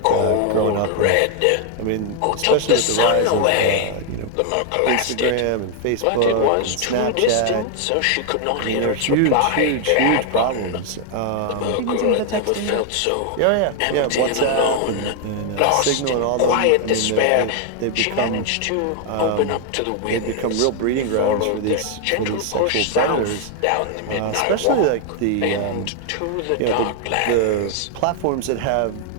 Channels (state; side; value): different; both; correlation 0.00